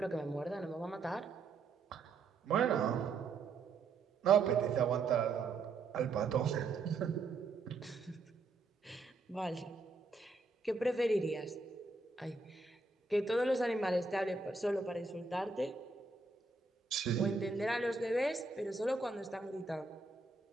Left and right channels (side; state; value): left; quieter; 4.0 dB